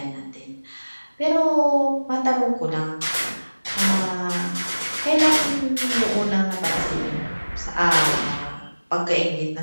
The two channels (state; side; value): inverted; both; correlation -1.00